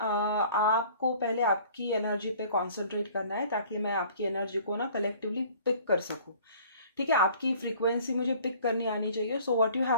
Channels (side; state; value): both; inverted; correlation -0.51